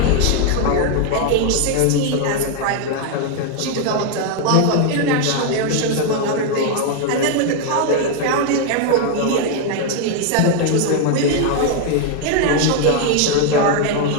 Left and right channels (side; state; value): both; different; correlation 0.00